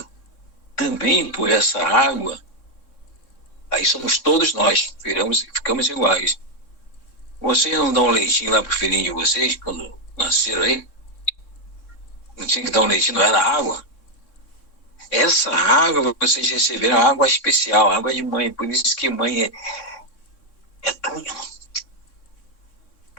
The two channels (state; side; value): late; right; 3.6 ms